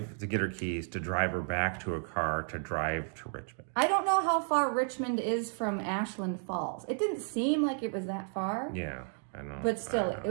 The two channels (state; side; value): silent; left; 56 dB below the other